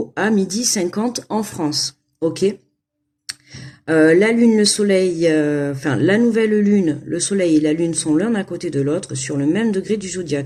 à 12h50 en France. Ok. La lune, le soleil, enfin la nouvelle lune, le soleil et la lune sont l'un à côté de l'autre sur le même degré du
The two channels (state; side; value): identical; both; correlation 1.00